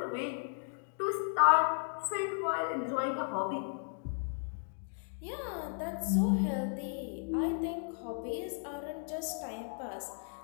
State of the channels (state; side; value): silent; right; digital silence